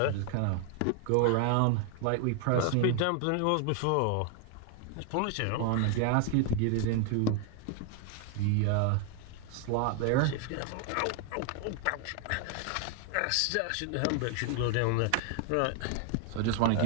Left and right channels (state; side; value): different; both; correlation 0.00